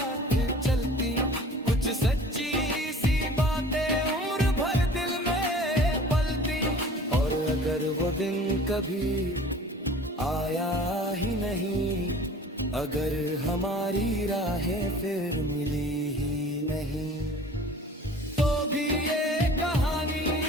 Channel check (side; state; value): both; normal; correlation 0.45